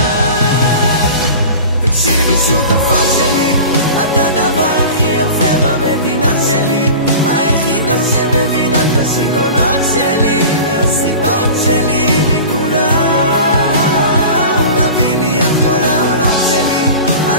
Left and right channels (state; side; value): inverted; both; correlation -0.36